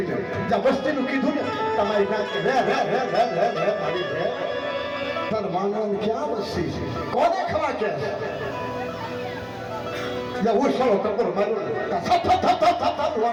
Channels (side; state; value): both; identical; correlation 1.00